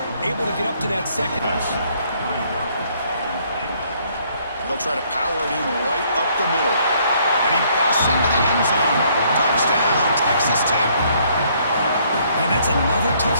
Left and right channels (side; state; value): both; inverted; correlation -0.66